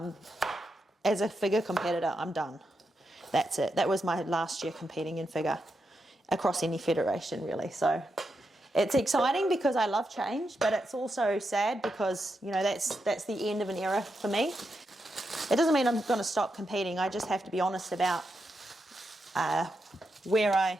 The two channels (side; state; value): both; normal; correlation 0.85